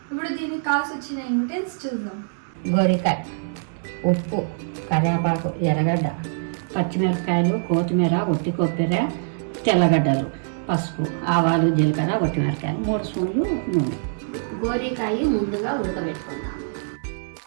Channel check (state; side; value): silent; left; digital silence